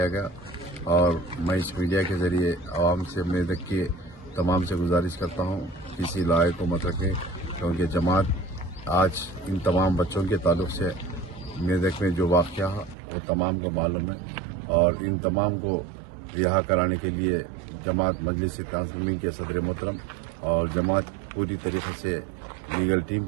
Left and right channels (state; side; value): drops out; left; at 13.0 s